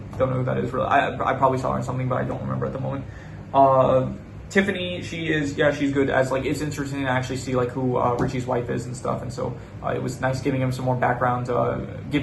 know who that is really. I probably saw her in something, but I don't remember at the moment. Tiffany, she's good as like, it's interesting to actually see like who Richie's wife is and stuff, and so it was nice giving him some more background,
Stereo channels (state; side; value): identical; both; correlation 1.00